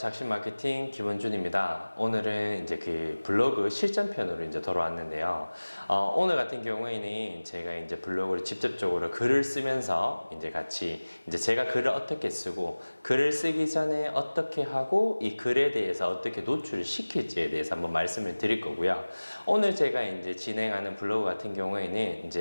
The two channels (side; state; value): both; inverted; correlation -1.00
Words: 마케팅 김원준입니다. 오늘은 이제 그 블로그 실전편으로 이제 돌아왔는데요. 오늘 같은 경우에는 제가 이제 블로그를 직접적으로 글을 쓰면서 이제 같이 이제 제가 글을 어떻게 쓰고 글을 쓰기 전에 어떻게 하고 이 글에 대해서 어떻게 노출을 시킬지에 대해서 한번 말씀을 드릴 거고요. 오늘 제가 이제 진행하는 블로그 같은 경우에는